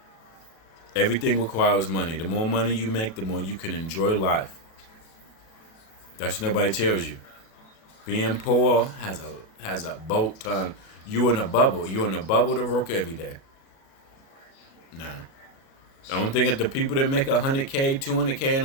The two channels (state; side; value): late; right; 37 ms